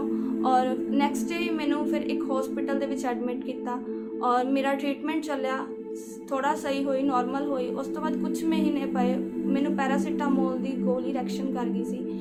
और नैक्सट डे मैनू फिर एक हॉस्पिटल दे विच एडमिट किया और मेरा ट्रीटमेंट चलिया, थोड़ा सही हुई, नॉर्मल हुई। उस तो बाद कुछ महीने पे मैनू पैरासीटामोल की गोली रिएक्शन कर गई सी,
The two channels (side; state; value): both; identical; correlation 1.00